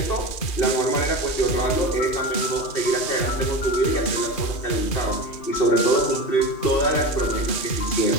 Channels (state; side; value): late; right; 2.5 ms